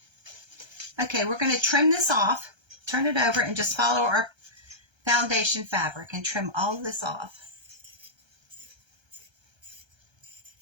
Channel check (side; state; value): left; late; 1.3 ms